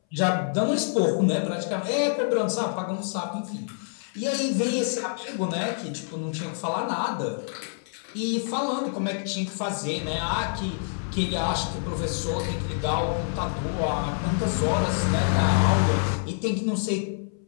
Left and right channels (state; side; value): silent; right; 60 dB below the other